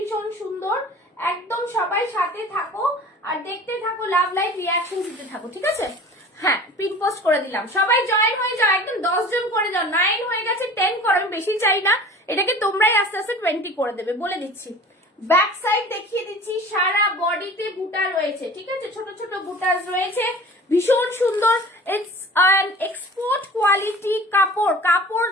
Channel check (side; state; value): both; normal; correlation 0.42